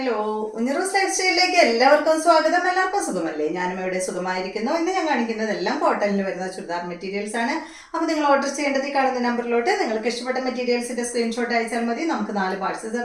ഉഞ്ഞിറൂസ് ലൈഫ് സ്റ്റൈലിലേക്ക് എല്ലാവർക്കും സ്വാഗതം. എല്ലാവർക്കും സുഖമല്ലേ? ഞാനും ഇവിടെ സുഖമായിരിക്കുന്നു. ഇന്ന് ഞാൻ കാണിക്കുന്നതെല്ലാം കോട്ടണിൽ വരുന്ന ചുരിദാർ മെറ്റീരിയൽസ് ആണ്. അപ്പോൾ നിങ്ങൾ ഓർഡർ ചെയ്യേണ്ടത് ഈ കാണുന്ന നമ്പറിലോട്ട് നിങ്ങൾക്ക് ഇഷ്ടപ്പെട്ട മെറ്റീരിയൽസിന്റെ സ്ക്രീൻഷോട്ട് അയച്ചാൽ മതി. നമുക്ക് 4 പാഴ്സൽ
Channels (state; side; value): identical; both; correlation 1.00